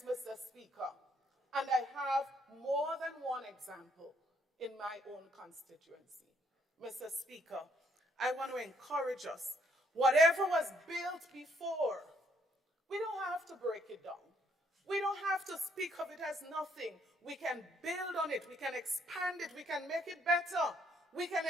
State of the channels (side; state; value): both; normal; correlation 0.69